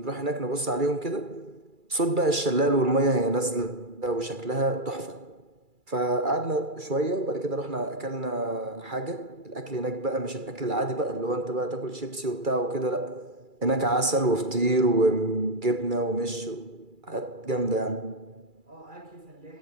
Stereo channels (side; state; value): left; late; 2.3 ms